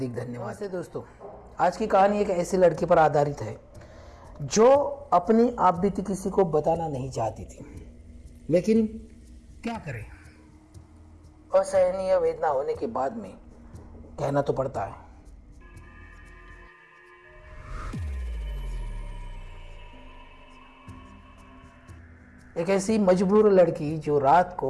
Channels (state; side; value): identical; both; correlation 1.00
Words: धन्यवाद। नमस्ते दोस्तों, आज की कहानी एक ऐसी लड़की पर आधारित है जो अपनी आप बीती किसी को बताना नहीं चाहती थी, लेकिन क्या करें, असहनीय वेदना होने के बाद में कहना तो पड़ता है। एक ऐसी मजबूर लड़की जो रात